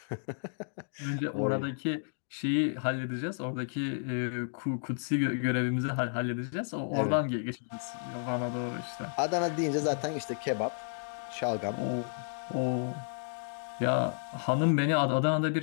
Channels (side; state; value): right; silent; digital silence